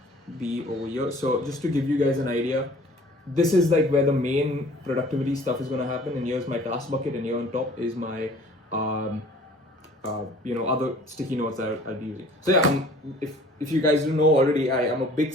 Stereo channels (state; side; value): normal; both; correlation 0.51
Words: B over here. So just to give you guys an idea, this is like where the main productivity stuff is going to happen, and here's my task bucket, and here on top is my other sticky notes that I'll be using. So yeah, if you guys don't know already, I am a big